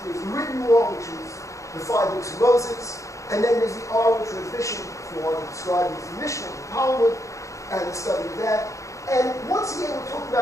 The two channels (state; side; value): late; right; 0.15 ms